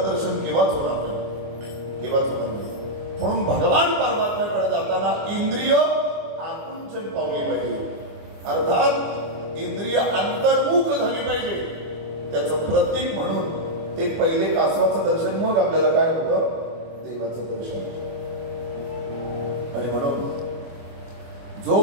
दर्शन केव्हाच होणार नाही. म्हणून भगवान परमात्म्याकडे जाताना इंद्रिय आकुंचन पावली पाहिजे. अर्थात इंद्रिय अंतर्मुख झाली पाहिजे. त्याचं प्रतीक म्हणून ते पहिले कासवाचं दर्शन मग आपल्याला काय होतं? देवाचं दर्शन. आणि म्हणून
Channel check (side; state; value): left; late; 24 ms